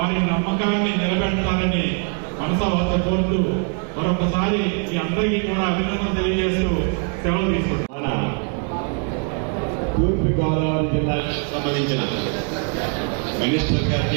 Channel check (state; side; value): quieter; left; 39.8 dB